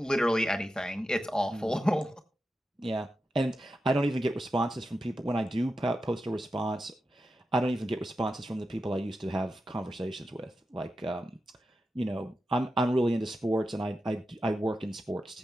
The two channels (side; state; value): both; normal; correlation 0.90